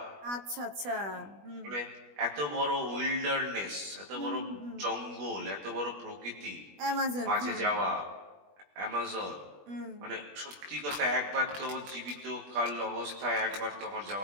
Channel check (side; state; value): left; late; 20 ms